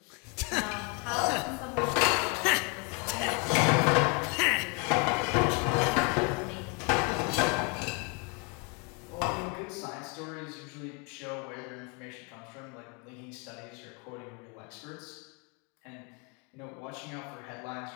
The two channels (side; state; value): right; quieter; 33.4 dB